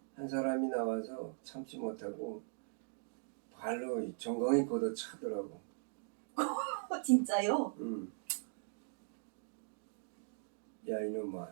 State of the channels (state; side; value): silent; left; digital silence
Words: 한 사람이 나와서 참지 못하고 발로 정강이 걷어 차더라고. 진짜요? 야 이놈아,